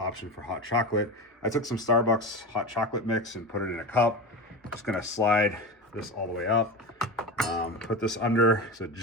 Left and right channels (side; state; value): both; normal; correlation 0.24